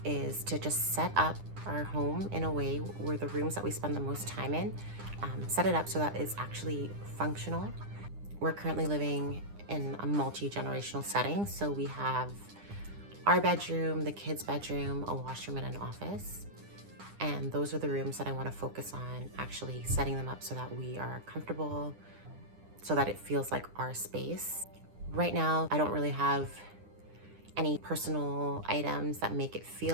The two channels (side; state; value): left; late; 9.9 ms